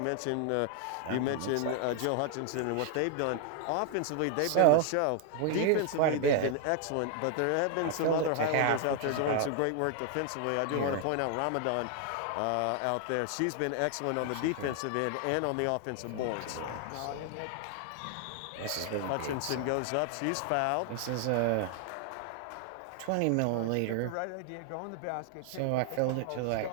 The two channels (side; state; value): both; different; correlation 0.00